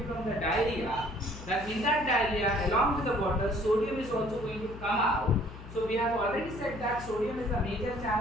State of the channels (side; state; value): left; noise; hum, 13 dB below the sound